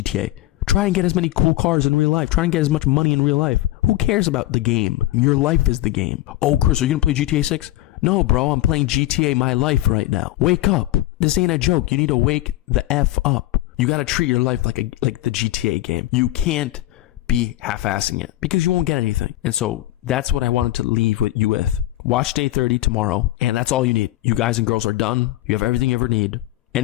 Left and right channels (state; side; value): quieter; right; 15.7 dB